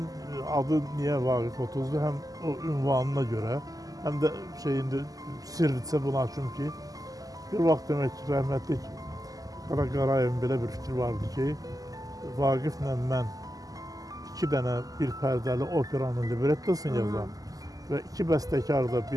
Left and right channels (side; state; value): left; late; 0.17 ms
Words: adı niyə Vaqif 30-dur? Həm o ünvanına görə, həm də sirricə buna açım ki, bir vaxt demək ki, rəhmətlik Qara Qarayevin belə bir fikri vardı ki, Vaqiflə mən 2 dənə bir pərdəli operanın librettosunu yazam və 2 bəstəkar da,